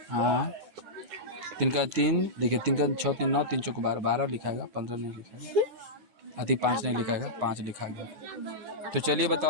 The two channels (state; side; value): late; left; 9.5 ms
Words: हाँ, 3 का 3 देखिए, 3 का 6 3 9, 3 चौको 12, 12 लिखाएगा, 15 नहीं लिखाएगा, अति 5 नहीं लिखाएगा, 5 लिखा गया। तो चलिए